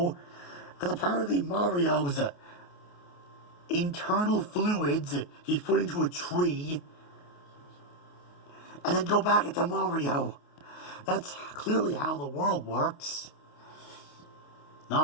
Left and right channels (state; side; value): late; right; 28 ms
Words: Because apparently Mario's internal fluids he's put into a tree and then go back into Mario. That's clearly how the world works.